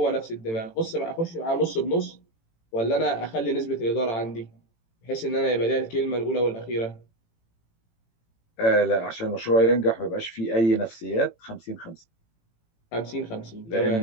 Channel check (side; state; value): right; late; 18 ms